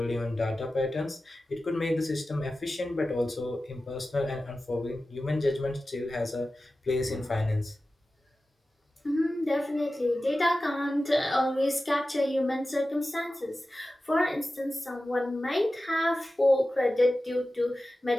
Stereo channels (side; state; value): both; normal; correlation 0.95